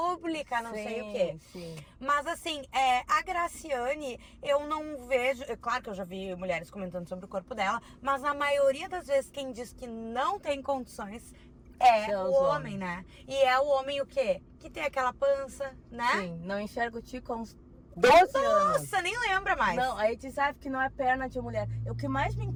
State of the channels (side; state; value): both; identical; correlation 1.00